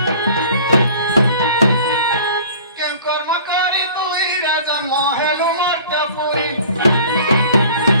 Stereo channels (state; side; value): inverted; both; correlation -0.46